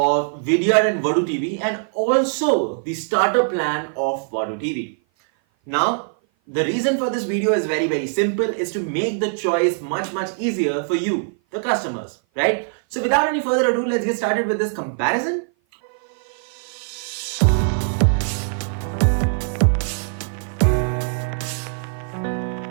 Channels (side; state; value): left; silent; 56 dB below the other